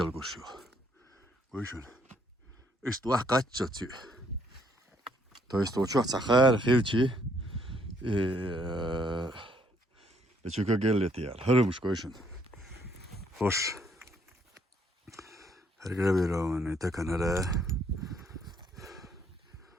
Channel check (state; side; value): normal; both; correlation 0.68